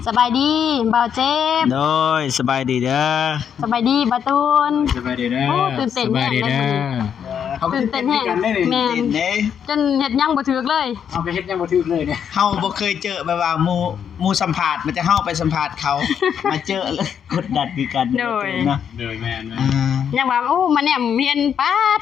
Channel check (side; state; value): right; quieter; 8.1 dB